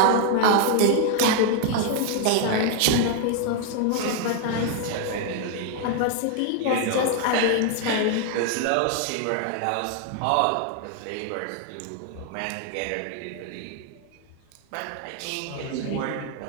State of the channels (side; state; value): both; different; correlation 0.00